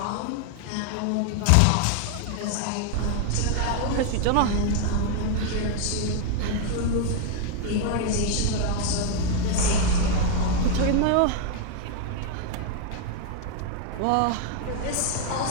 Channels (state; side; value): different; both; correlation 0.01